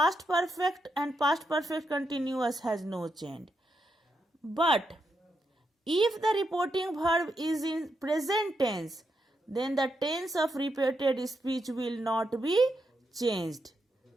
perfect continuous has no change. But if the reporting verb is in present tense, then the tense of repeated speech will not be changed.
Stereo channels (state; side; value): normal; both; correlation 0.82